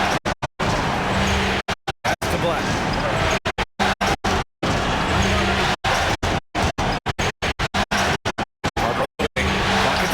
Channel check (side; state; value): both; identical; correlation 1.00